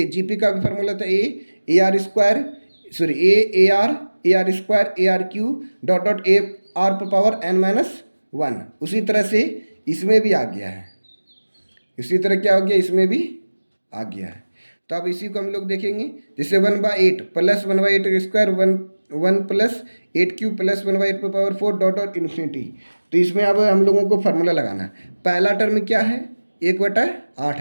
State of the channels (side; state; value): both; inverted; correlation -1.00